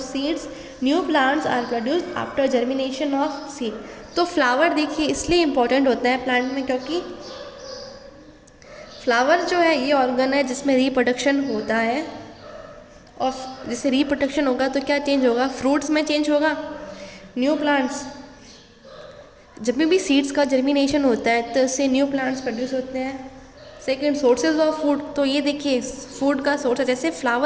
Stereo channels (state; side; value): identical; both; correlation 1.00